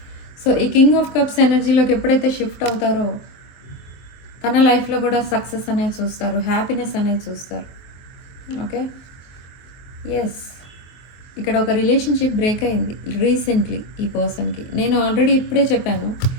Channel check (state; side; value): late; right; 23 ms